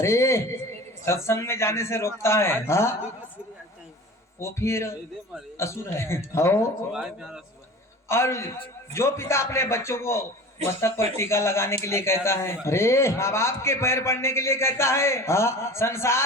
सत्संग में जाने से रोकता है, हाँ वो फिर असुर है। हो और जो पिता अपने बच्चों को मस्तक पर टीका लगाने के लिए कहता है, अरे माँ बाप के पैर पड़ने के लिए कहता है, हाँ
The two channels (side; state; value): both; normal; correlation 0.38